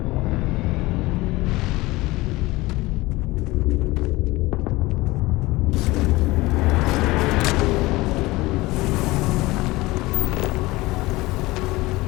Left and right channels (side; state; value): right; quieter; 20.3 dB